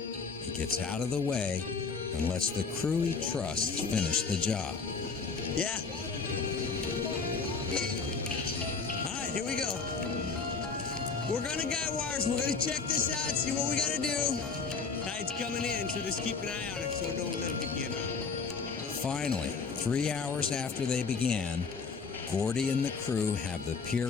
He gets out of the way and lets the crew he trusts finish the job. Yeah. All right, here we go. We're gonna guy wires. We're gonna check this out, see what we gotta do. Tide's coming in, so just keep an eye on it so don't let it begin. Finally, 3 hours after they began, Gordy and the crew have the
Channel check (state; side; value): quieter; right; 5.0 dB